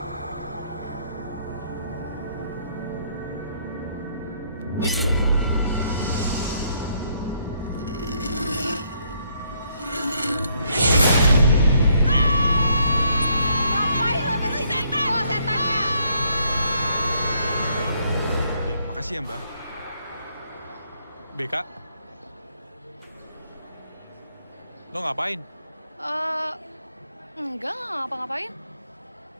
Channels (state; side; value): inverted; both; correlation -0.70